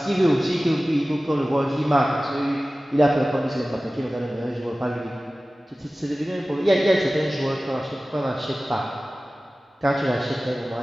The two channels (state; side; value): normal; both; correlation 0.97